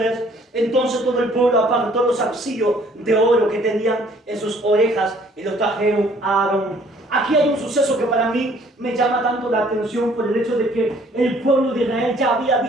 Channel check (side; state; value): both; normal; correlation 0.59